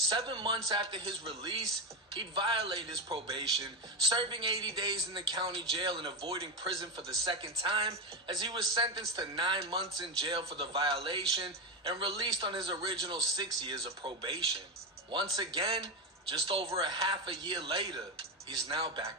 months after his release, he'd violate his probation, serving 80 days in the county jail and avoiding prison for the second time, as he was sentenced to 9 months in jail for the violation and released on his original 6 years of probation. Once again, just over a half a year later, he's now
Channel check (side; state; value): both; normal; correlation 0.13